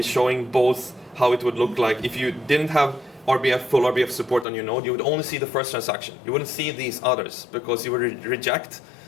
showing both how it would look like if you didn't have full RBF support on your node. You would only see the first transaction. You wouldn't see these others because you would reject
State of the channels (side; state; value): right; drops out; at 4.5 s